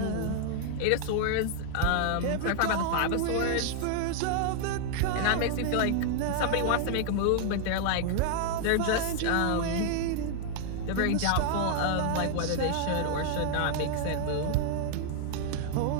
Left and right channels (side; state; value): both; different; correlation 0.00